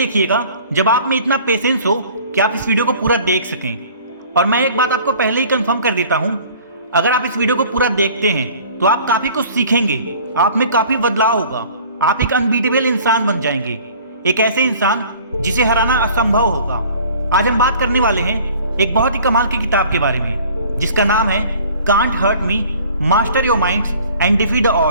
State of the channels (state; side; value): inverted; both; correlation -0.49